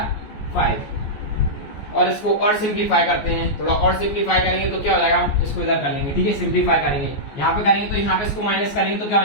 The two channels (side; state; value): right; late; 14 ms